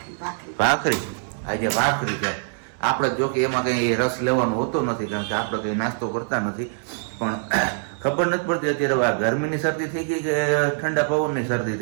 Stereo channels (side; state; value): left; silent; 63 dB below the other